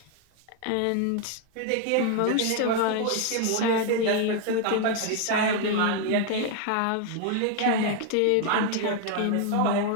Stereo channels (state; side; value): different; both; correlation 0.01